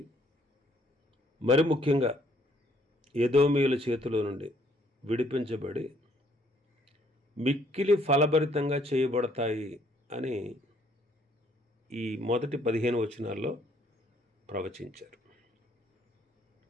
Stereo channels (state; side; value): normal; both; correlation 0.65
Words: మరి ముఖ్యంగా ఎదోమీయుల చేతిలో నుండి విడిపించబడి మిక్కిలి ఫలభరితంగా చేయబడతాయి అని ఈ మొదటి 15 వచనాల్లో ప్రవచించారు.